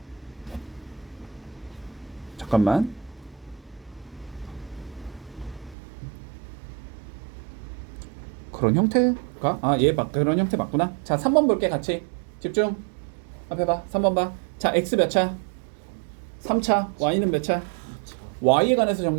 잠깐만. 그런 형태가? 그런 형태 맞구나. 자, 3번 볼게 같이. 집중. 앞에 봐. 3번 봐. 자, x 몇 차? 3차. y는 몇 차? y에 관해서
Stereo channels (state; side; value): drops out; left; at 5.8 s